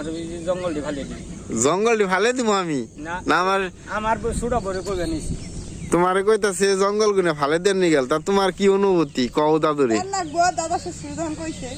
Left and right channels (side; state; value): both; identical; correlation 1.00